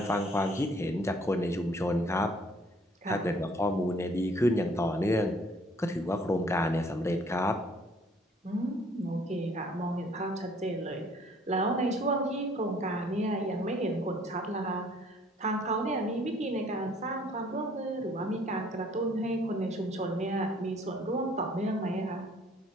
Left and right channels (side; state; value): both; normal; correlation 0.59